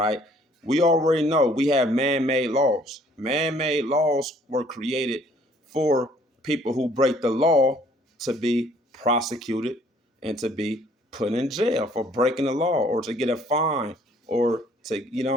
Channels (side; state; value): both; normal; correlation 0.60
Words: We already know we have man-made laws. Man-made laws were created for people who break the law to be prosecuted and to be put in jail for breaking the law, or to get a fine, or to, you know